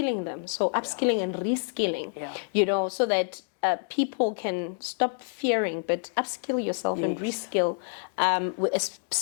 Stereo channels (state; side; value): silent; right; 60 dB below the other